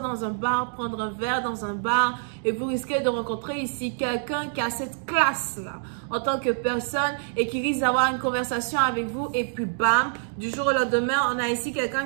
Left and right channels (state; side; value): silent; left; digital silence